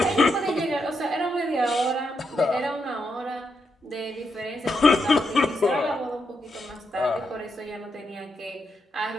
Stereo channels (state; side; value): normal; both; correlation 0.82